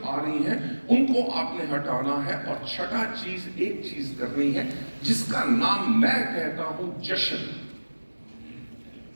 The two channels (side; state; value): both; inverted; correlation -1.00